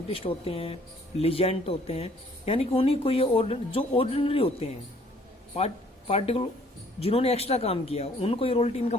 होते हैं, लीजेंड होते हैं, यानी कि उन्हीं को ये जो ऑर्डिनरी होते हैं, पार्टिकुलर जिन्होंने एक्स्ट्रा काम किया, उनको ये रॉयल्टी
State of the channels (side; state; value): both; normal; correlation 0.60